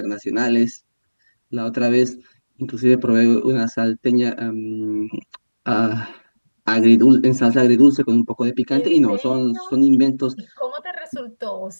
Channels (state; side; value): inverted; both; correlation -1.00